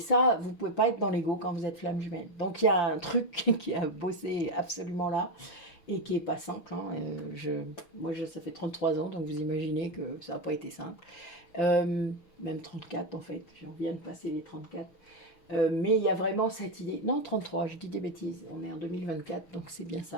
vous ne pouvez pas être dans l'ego quand vous êtes flamme jumelle. Donc il y a un truc qui a bossé absolument là et qui n'est pas simple. Moi, ça fait 33 ans, donc vous imaginez que ça n'a pas été simple. Même 34 en fait, j'en viens de passer les 34. Mais il y a vraiment cette idée. Non, 33, je dis des bêtises. On est en 2024, donc c'est bien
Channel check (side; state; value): right; late; 6.2 ms